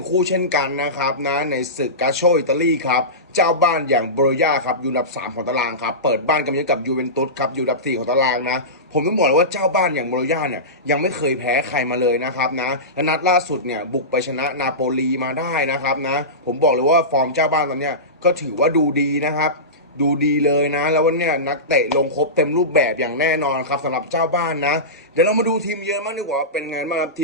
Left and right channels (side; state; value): both; normal; correlation -0.19